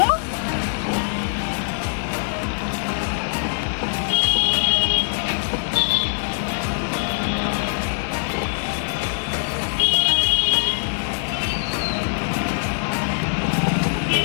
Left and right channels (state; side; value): silent; right; digital silence